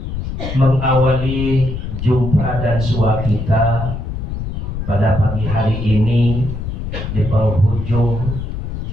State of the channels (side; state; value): left; noise; rumble, 5 dB below the sound